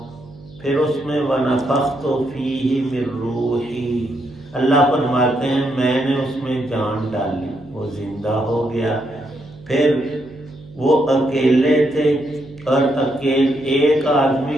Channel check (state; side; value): noise; right; hum, 21 dB below the sound